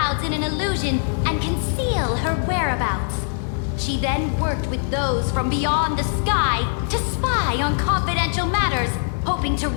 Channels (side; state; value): right; silent; digital silence